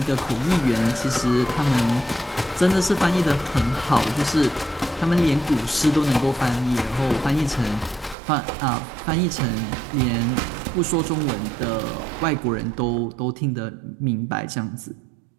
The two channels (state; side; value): drops out; left; at 8.2 s